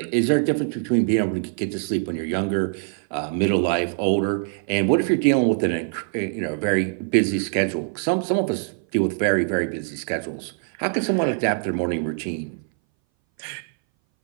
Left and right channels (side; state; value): left; silent; 60 dB below the other